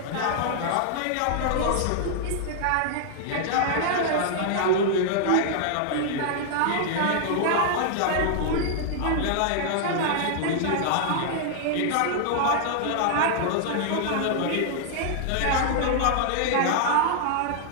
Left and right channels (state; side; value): different; both; correlation -0.01